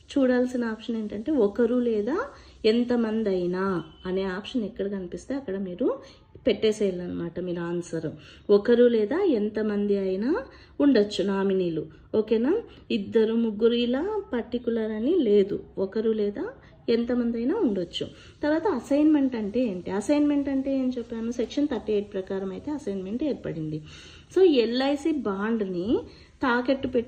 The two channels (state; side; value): identical; both; correlation 1.00